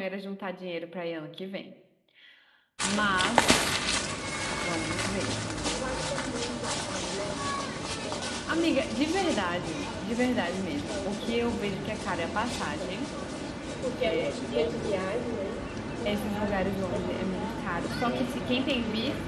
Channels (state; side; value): identical; both; correlation 1.00